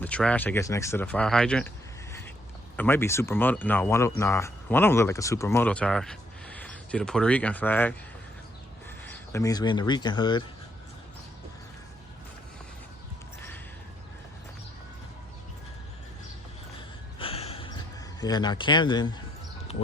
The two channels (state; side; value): normal; both; correlation 0.72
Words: trash, I guess, next to the fire hydrant. It might be supermoto. No, one of them look like a supermoto tire. See the Puerto Rican flag. That means we're in the Rican hood. Yeah, now Camden